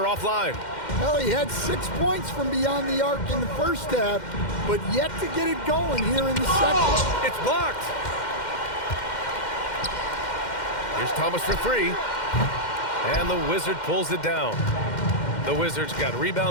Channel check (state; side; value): late; right; 2.1 ms